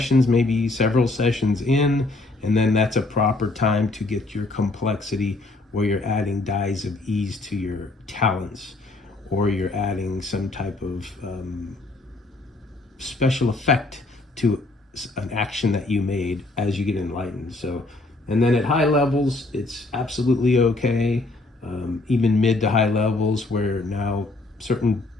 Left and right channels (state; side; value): quieter; right; 3.0 dB